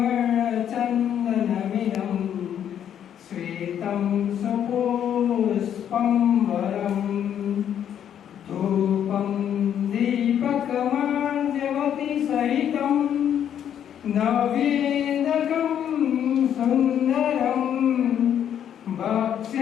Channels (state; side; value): quieter; right; 9.5 dB